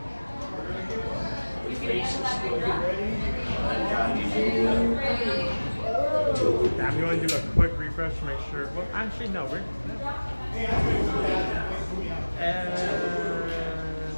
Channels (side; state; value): both; inverted; correlation -1.00